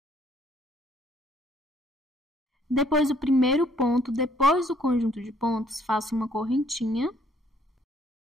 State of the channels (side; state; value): both; normal; correlation 0.64